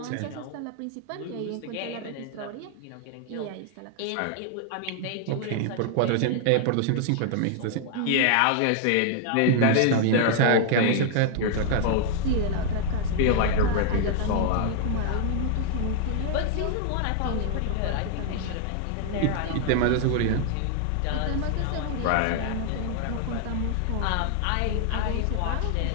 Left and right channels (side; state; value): both; different; correlation 0.00